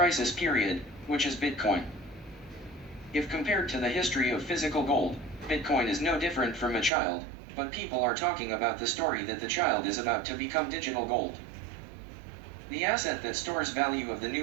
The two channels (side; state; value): left; drops out; at 6.9 s